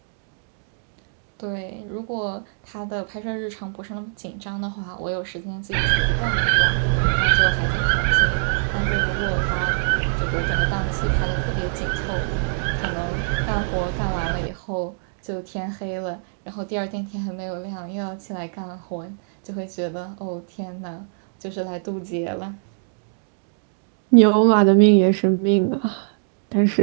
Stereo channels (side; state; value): left; silent; digital silence